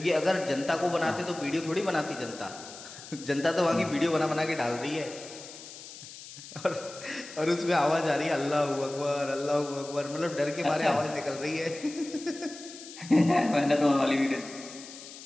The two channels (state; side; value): noise; left; hiss, 15 dB below the sound